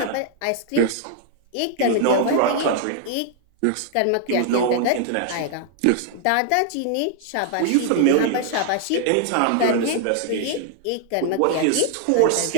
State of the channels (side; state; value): both; different; correlation 0.00